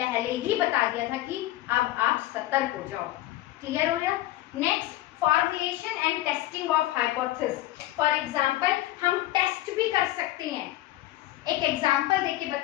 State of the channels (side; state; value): right; quieter; 15.8 dB